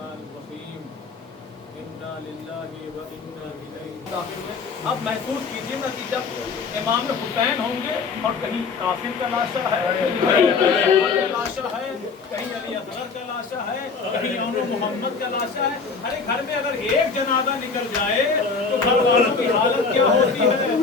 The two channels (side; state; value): right; quieter; 4.9 dB